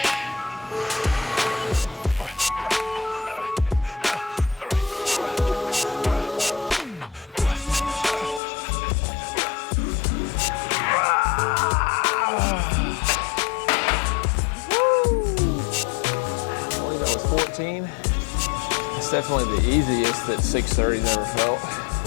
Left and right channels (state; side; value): drops out; right; at 8.4 s